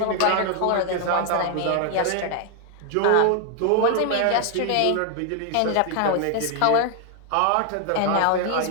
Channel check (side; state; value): both; different; correlation 0.00